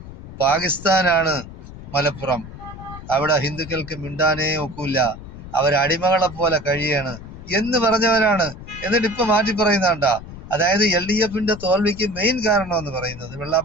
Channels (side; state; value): left; noise; rumble, 14 dB below the sound